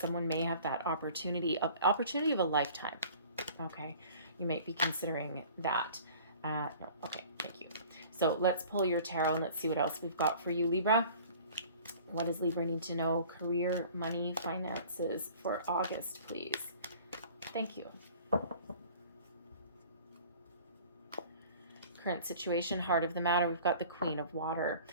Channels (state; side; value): inverted; both; correlation -0.47